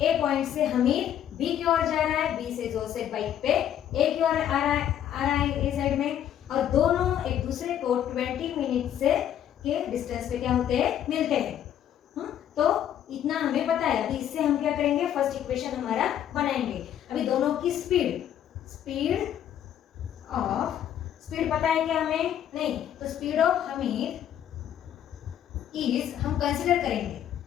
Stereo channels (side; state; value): right; quieter; 10.4 dB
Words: ए पॉइंट से हमीद बी की ओर जा रहा है, बी से जोसेफ बाइक पे ए की ओर आ रहा है ए साइड में, और दोनों एक दूसरे को 20 मिनट से के डिस्टेंस पे क्या होते हैं, मिलते हैं। तो इतना हमें पता है। अभी इससे हम क्या करेंगे, फर्स्ट इक्वेशन हमारा बनाएंगे। अभी दोनों की स्पीड पता है क्या हमें, नहीं, तो स्पीड ऑफ हमीद इज, हम कंसिडर